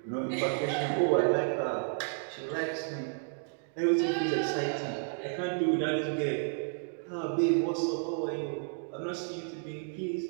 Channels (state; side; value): silent; left; digital silence